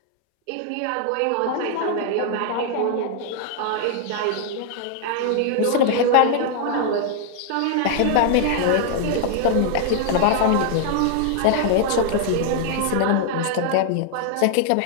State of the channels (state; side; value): different; both; correlation 0.00